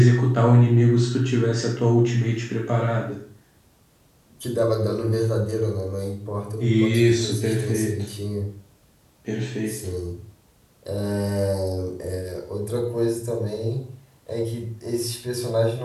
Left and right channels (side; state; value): both; identical; correlation 1.00